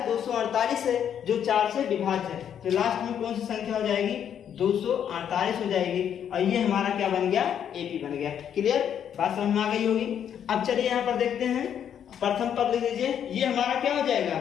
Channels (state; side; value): quieter; right; 9.0 dB